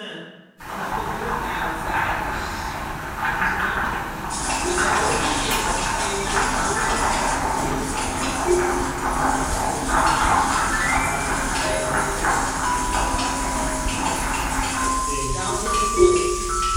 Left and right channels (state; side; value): identical; both; correlation 1.00